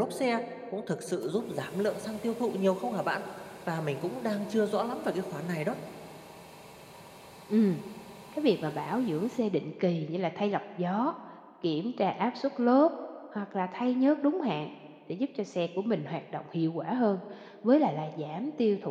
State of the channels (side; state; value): both; identical; correlation 1.00